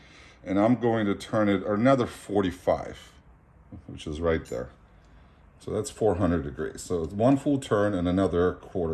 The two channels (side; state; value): both; identical; correlation 1.00